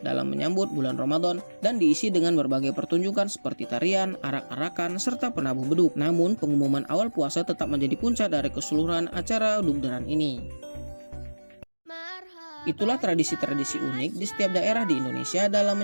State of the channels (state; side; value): inverted; both; correlation -1.00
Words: dalam menyambut bulan Ramadan dan diisi dengan berbagai pertunjukan seperti tarian, arak-arakan, serta penabuh beduk. Namun pengumuman awal puasa tetap menjadi puncak dari keseluruhan acara Dugderan ini. Itulah tradisi-tradisi unik di setiap daerah di Indonesia dalam